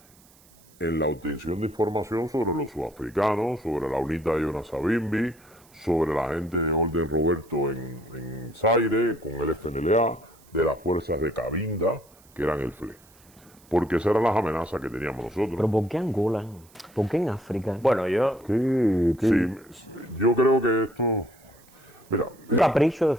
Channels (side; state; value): right; noise; hiss, 28 dB below the sound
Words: en la obtención de información sobre los sudafricanos, sobre la UNITA de Jonas Savimbi, sobre la gente de Orden Roberto en Zaire, con el FNLA, de las fuerzas de Cabinda, que eran el FLE. Porque esas eran las amenazas que teníamos nosotros. ¿Pero por qué Angola? ¿Por qué en África? Bueno, yo... Sí, yo creo que esto... Mira, ¿Un capricho de